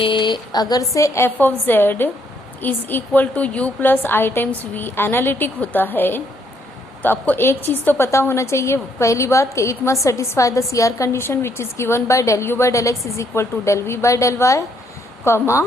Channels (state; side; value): normal; both; correlation 0.71